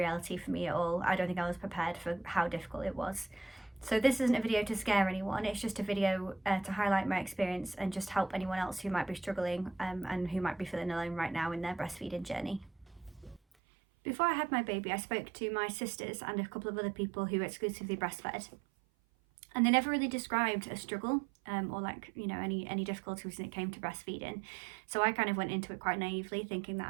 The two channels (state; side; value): drops out; left; at 13.4 s